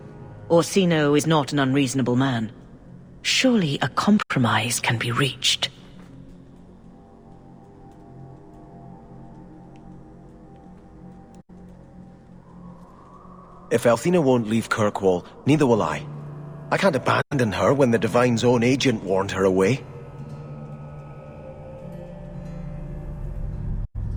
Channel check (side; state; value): both; identical; correlation 1.00